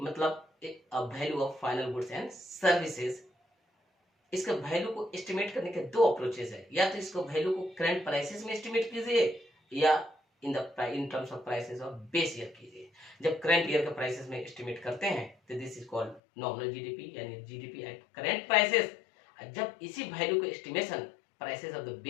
value of final goods and services. इसका वैल्यू को एस्टिमेट करने के दो अप्रोचेस है, या तो इसको वैल्यू को करंट प्राइसेस में एस्टिमेट कीजिए या in terms of prices of base year कीजिए। जब करंट ईयर के प्राइसेस में एस्टिमेट करते हैं तो this is called nominal GDP, यानी जीडीपी एट करंट प्राइसेस। जब इसी वैल्यू को estimation prices of the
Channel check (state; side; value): drops out; right; at 16.2 s